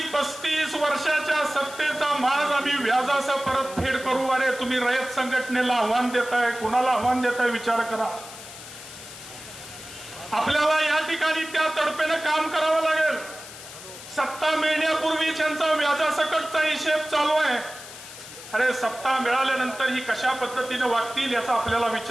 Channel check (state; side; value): noise; left; hiss, 14 dB below the sound